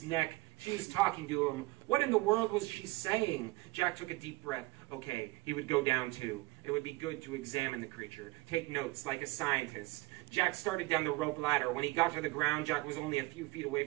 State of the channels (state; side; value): quieter; left; 21.8 dB